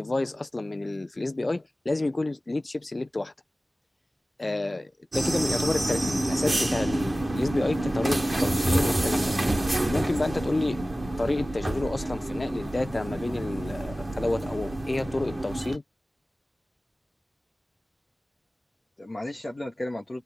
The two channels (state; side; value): normal; both; correlation 0.96